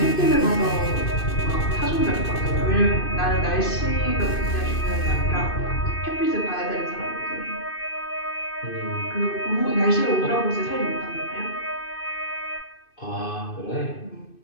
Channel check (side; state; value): right; late; 2.6 ms